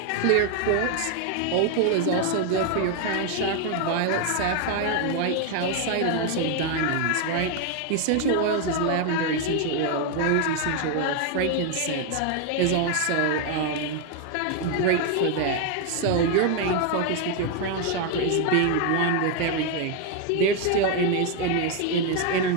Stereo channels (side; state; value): both; different; correlation 0.01